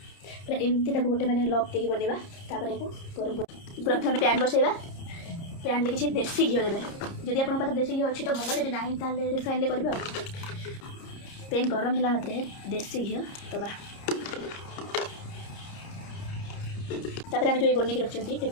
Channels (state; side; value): late; right; 30 ms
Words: एमती ताको गोटे मैंने लॉक देकी बनवा तापर को गरम प्रथम पैन बसैवा पैन ले किसी देसी घी देवे जदि आप पाखे देसी घी अच्छी तो भल जब ना ताले रिफाइन ले करेंगे पैन गरम है मात्रे देसी घी दबा तापर आम जो बनिक रखी